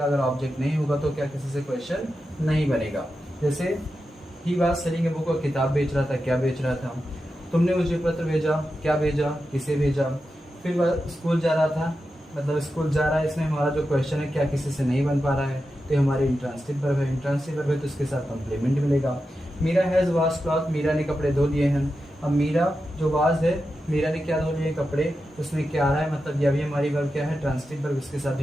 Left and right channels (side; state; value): both; normal; correlation 0.90